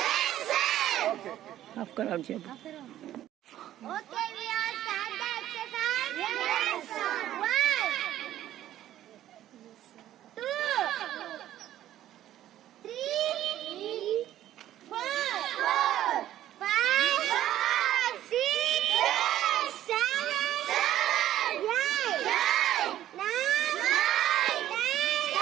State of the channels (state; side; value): quieter; left; 12.7 dB